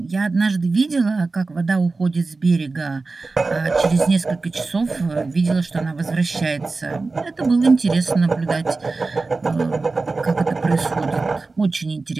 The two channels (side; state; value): left; quieter; 3.7 dB